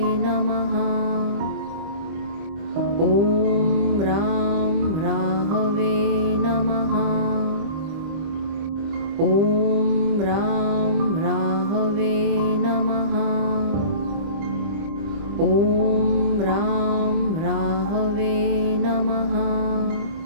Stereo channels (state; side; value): late; left; 25 ms